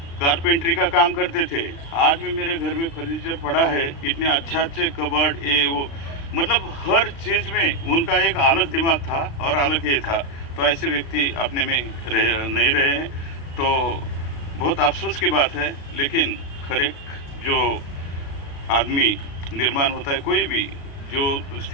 कारपेंट्री का काम करते थे, आज भी मेरे घर में फर्नीचर पड़ा है, इतने अच्छे कबर्ड, ये वो, मतलब हर चीज़ में उनका एक अलग दिमाग था और अलग ये था। तो ऐसे व्यक्ति अपने में नहीं रहे हैं, तो बहुत अफसोस की बात है। लेकिन हर एक जो आदमी निर्माण होता है, कोई भी जो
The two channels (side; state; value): right; late; 36 ms